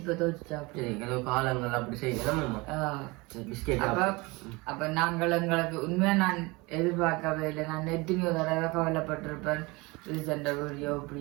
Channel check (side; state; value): left; quieter; 24.7 dB